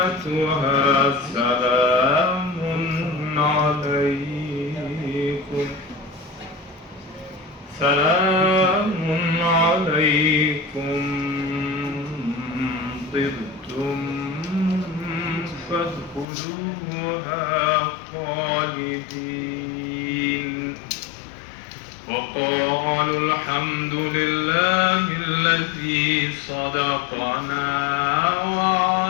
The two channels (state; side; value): drops out; right; at 16.2 s